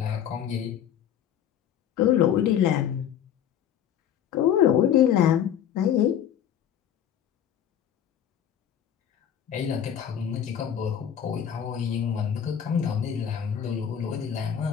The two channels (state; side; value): quieter; right; 9.4 dB